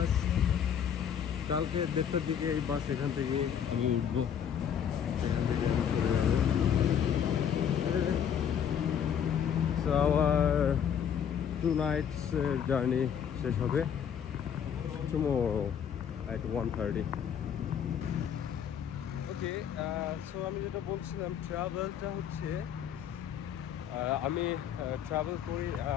কালকে 1:30টার দিকে এই বাস এখান থেকে আমি উঠবো, এখান থেকে চলে যাবো। সো আমার 2 nights জার্নি শেষ হবে tomorrow at 1:30. ওকে, সো আমি যেটা বলছিলাম, ট্রাভেলটা হচ্ছে আমি ট্রাভেল করি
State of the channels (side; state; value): right; quieter; 8.4 dB